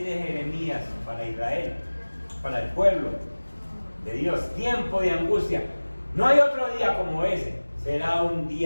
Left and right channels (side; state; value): both; inverted; correlation -1.00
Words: Jeremías, para Israel, para el pueblo de Dios. Tiempo de angustia. No hay otro día como ese. Será un